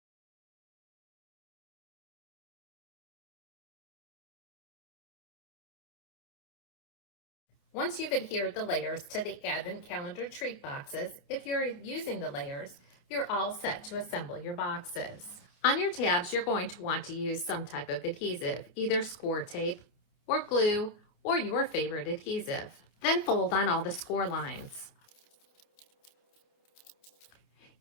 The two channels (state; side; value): late; right; 28 ms